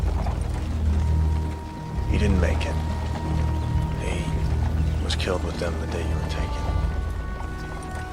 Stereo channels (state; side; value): identical; both; correlation 1.00